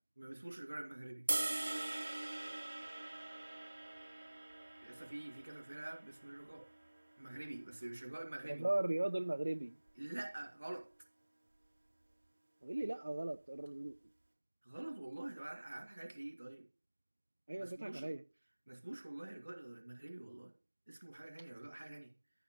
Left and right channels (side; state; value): both; inverted; correlation -1.00